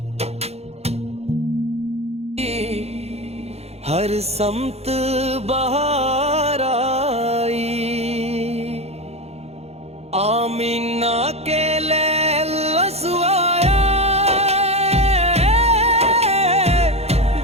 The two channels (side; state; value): left; late; 0.30 ms